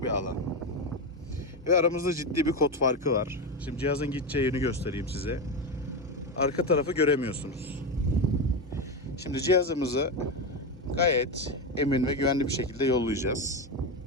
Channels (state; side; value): normal; both; correlation 0.13